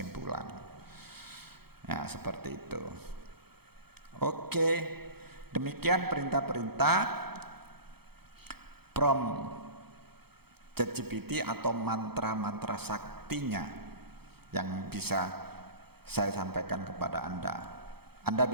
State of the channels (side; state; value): left; late; 0.96 ms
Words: Nah, seperti itu. Oke, demikian perintah-perintah prompt ChatGPT atau mantra-mantra saktinya yang bisa saya sampaikan kepada Anda. Anda